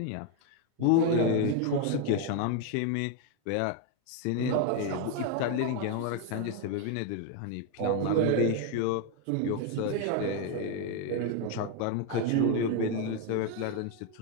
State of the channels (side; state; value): both; different; correlation 0.01